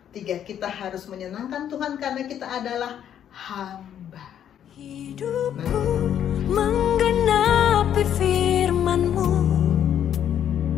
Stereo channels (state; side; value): quieter; right; 9.8 dB